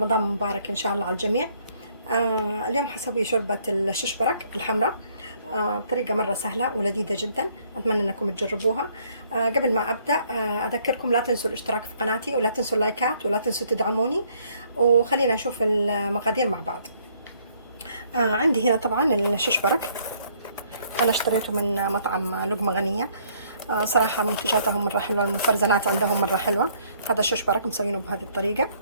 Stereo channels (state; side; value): inverted; both; correlation -0.65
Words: مبارك إن شاء الله على الجميع. اليوم حسوي شوربة الششبرك الحمراء. بطريقة مرة سهلة ولذيذة جدا، أتمنى أنكم تجربوها. قبل ما أبدأ أذكركم لا تنسوا الاشتراك في قناتي، ولا تنسوا اللايكات، ولا تنسوا تدعموني. وخلينا نشوف المقادير مع بعض. عندي هنا طبعا الششبرك، أنا اشتريته من مطعم لقمة غنية. صراحة منتجاتهم مرة حلوة، المفرزنات عندهم مرة حلوة. هذا الششبرك مسوينه بهذه الطريقة.